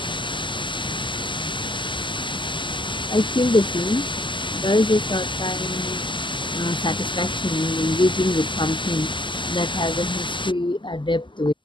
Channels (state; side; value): late; right; 0.24 ms